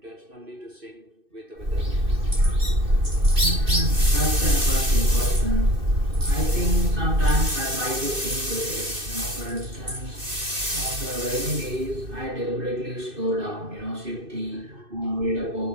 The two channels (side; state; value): left; late; 2.6 ms